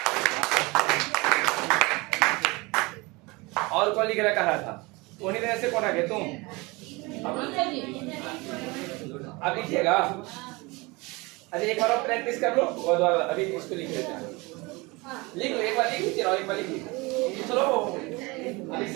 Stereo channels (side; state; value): left; quieter; 24.8 dB